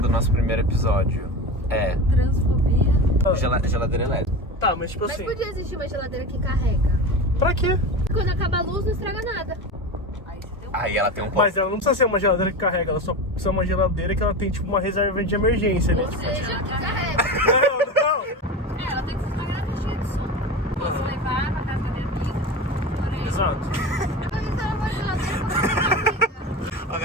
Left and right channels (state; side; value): normal; both; correlation 0.26